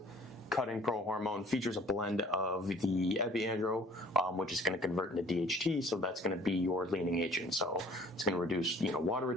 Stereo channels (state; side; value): normal; both; correlation 0.52